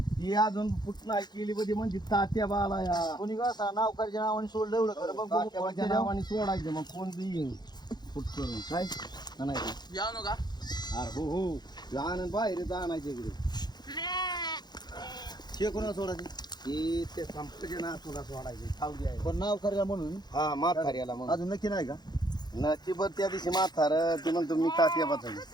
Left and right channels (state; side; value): late; right; 0.20 ms